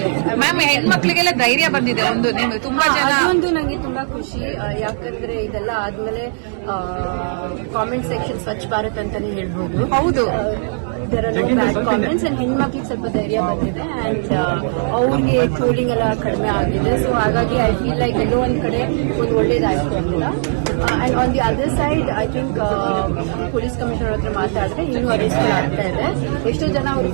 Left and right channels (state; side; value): silent; left; 67 dB below the other